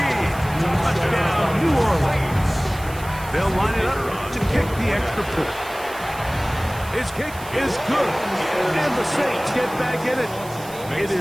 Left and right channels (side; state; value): right; noise; hiss, 17 dB below the sound